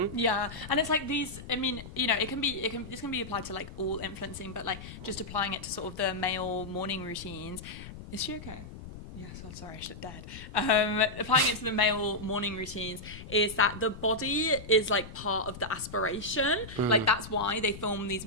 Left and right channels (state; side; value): noise; left; rumble, 13 dB below the sound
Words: Yeah, and it's like these, I mean, you know, this can be applied to like all influencing, but like just applying it to sort of the male morning routines. Is she okay? Yes, oh, sorry, she looked dead. Applying it to the male morning routines is that the body is like part of the aspiration. Like that's why they film these